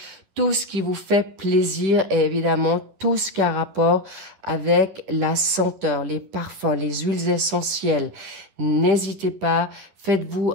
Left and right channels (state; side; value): late; left; 11 ms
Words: tout ce qui vous fait plaisir et évidemment tout ce qui a rapport avec la senteur, les parfums, les huiles essentielles. N'hésitez pas, faites-vous